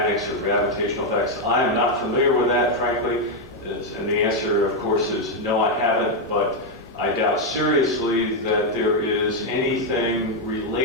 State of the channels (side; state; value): both; normal; correlation 0.02